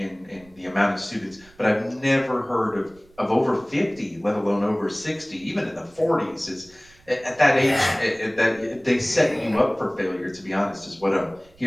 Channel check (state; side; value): noise; right; rumble, 28 dB below the sound